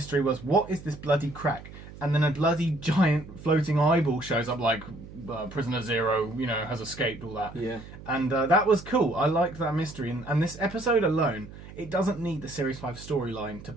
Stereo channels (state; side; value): noise; right; hum, 16 dB below the sound